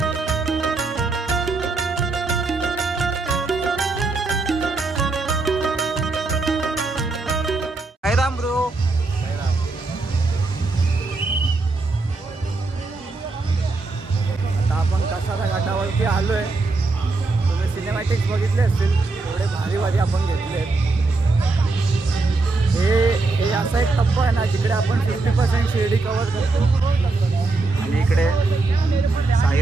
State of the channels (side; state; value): left; quieter; 3.6 dB